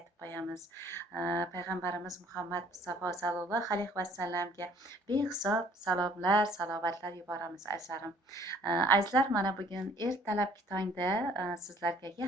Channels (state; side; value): normal; both; correlation 0.58